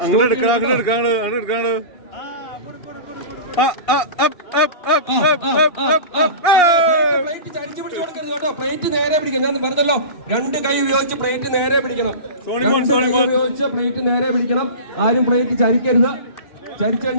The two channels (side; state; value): right; late; 2.8 ms